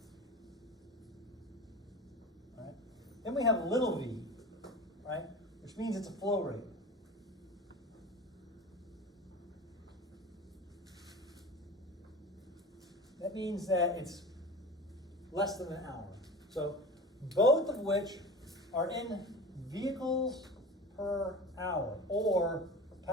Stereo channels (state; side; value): normal; both; correlation 0.33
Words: All right. Then we have little v, right, which means it's a flow rate. That means that it's less than an hour. So both of which are in vehicles per hour or